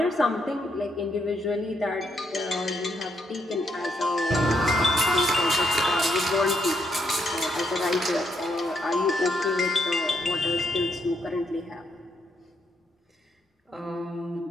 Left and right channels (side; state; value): both; normal; correlation 0.76